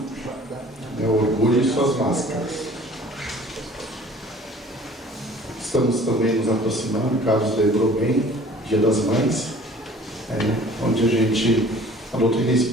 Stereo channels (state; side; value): normal; both; correlation 0.49